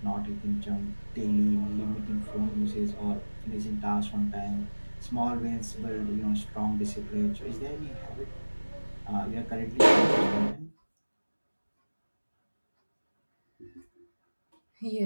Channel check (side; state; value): both; inverted; correlation -1.00